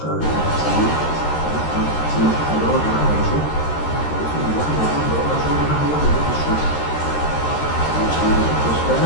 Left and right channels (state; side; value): late; right; 13 ms